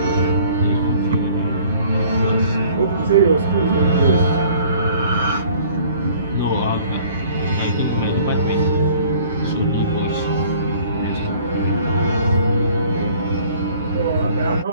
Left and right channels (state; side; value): inverted; both; correlation -0.53